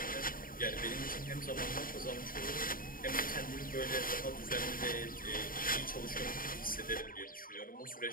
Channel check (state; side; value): late; right; 0.41 ms